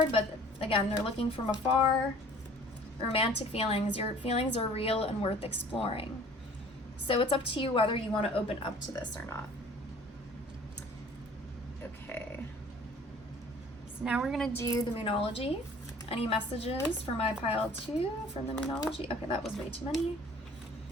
but again, they're looking from afar. Romantic feelings. Your feelings are real and worth exploring. So it's up to you whether you want to open up to this or not. Okay. So now we're going to do the Moonology. Any messages for my pile 2 from the Moonology? Okay, that was way too many.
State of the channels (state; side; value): normal; both; correlation 0.50